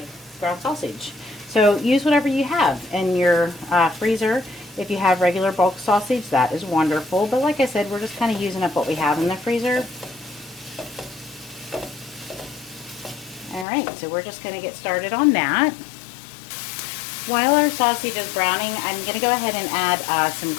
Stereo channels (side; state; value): right; drops out; at 13.7 s